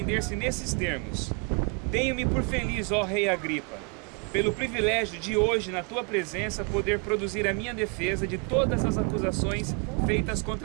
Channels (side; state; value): left; quieter; 33.5 dB